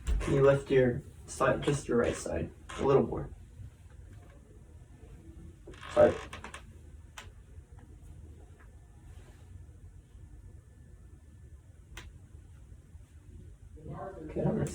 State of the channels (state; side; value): identical; both; correlation 1.00